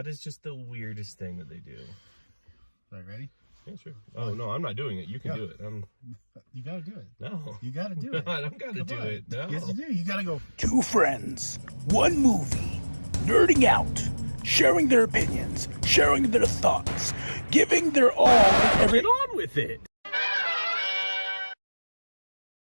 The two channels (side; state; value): both; inverted; correlation -1.00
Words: is just the weirdest thing that they do. All right, ready? Yeah, sure. Oh, no, I'm not doing it. You can do it. You got to do it. No. You got to do it. I don't got to do it. No. Yes, you do. You got to go. Two friends, one movie, nerding out, sharing their opinions, sharing their thoughts, giving their all and every... Get on with it.